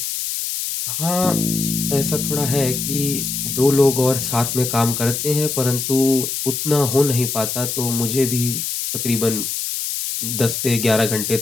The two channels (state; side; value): noise; left; hiss, 3 dB below the sound